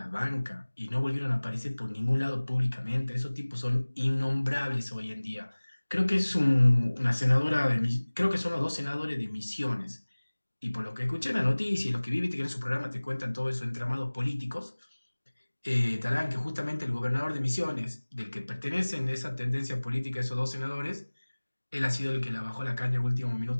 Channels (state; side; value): inverted; both; correlation -1.00